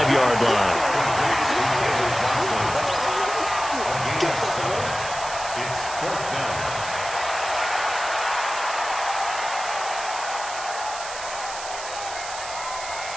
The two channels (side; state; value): right; noise; hiss, 10 dB below the sound